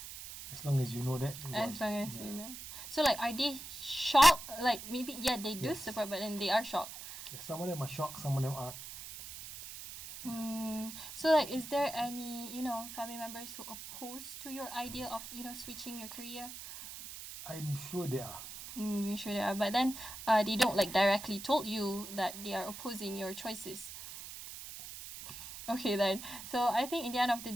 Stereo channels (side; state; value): right; noise; hiss, 11 dB below the sound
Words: as long as you know that. As long as you know. So like, are they shocked? Like maybe they do support, but then they are shocked. Yeah, some of them are shocked, some of them aren't. So like, is there any family members who oppose to your idea of switching your career? I'm sure they are. You sure they are, but then they don't like directly told you that they are opposing your choices. Okay then. So I think in the end of the